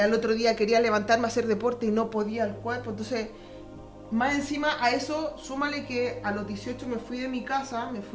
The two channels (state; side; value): identical; both; correlation 1.00